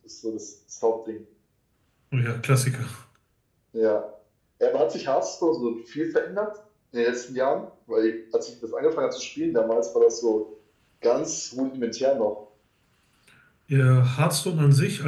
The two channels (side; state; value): both; identical; correlation 1.00